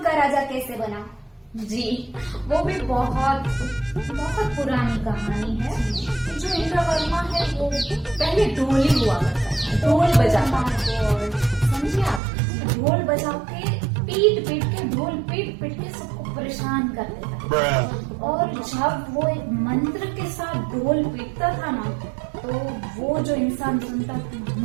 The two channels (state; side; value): drops out; left; at 12.2 s